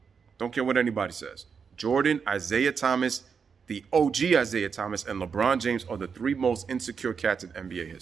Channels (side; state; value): left; quieter; 6.1 dB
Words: Don't care what anybody says. Jordan, Isiah Thomas, the OG Isiah Thomas, and LeBron James are the three most insecure cats in NBA